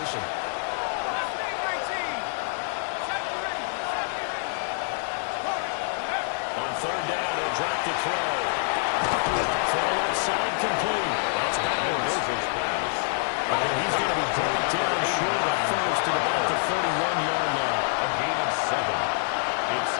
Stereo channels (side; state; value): right; silent; 61 dB below the other